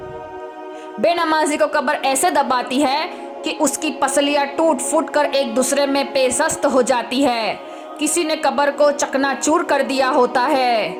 बेनमाजी को कब्र ऐसे दबाती है कि उसकी पसलियाँ टूट फूट कर एक दूसरे में पेशस्त हो जाती है। किसी ने कब्र को चकनाचूर कर दिया होता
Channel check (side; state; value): both; identical; correlation 1.00